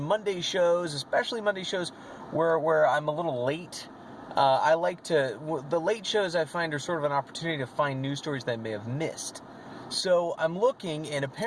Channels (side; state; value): both; identical; correlation 1.00